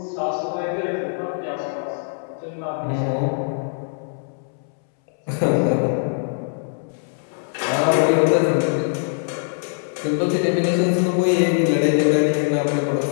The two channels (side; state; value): right; silent; 64 dB below the other